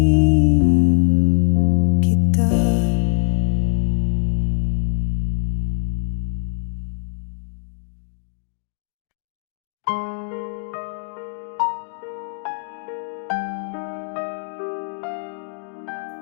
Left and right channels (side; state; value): right; silent; digital silence